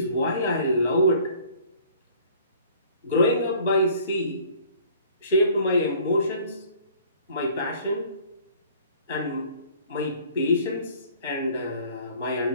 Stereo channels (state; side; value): inverted; both; correlation -0.53